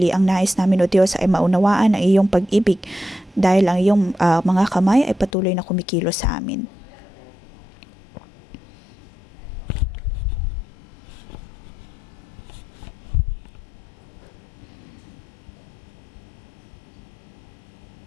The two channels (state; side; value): drops out; right; at 5.3 s